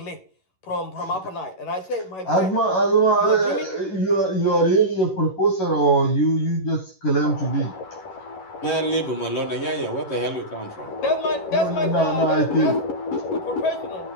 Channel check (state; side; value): late; right; 11 ms